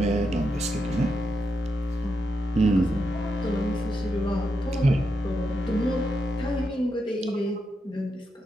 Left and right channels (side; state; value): both; normal; correlation 0.84